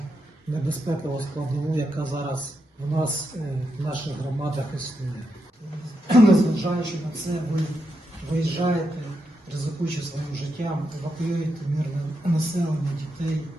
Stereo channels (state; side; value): normal; both; correlation 0.84